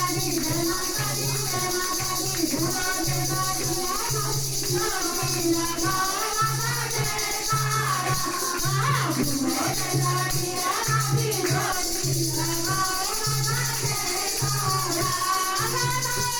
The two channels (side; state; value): both; identical; correlation 1.00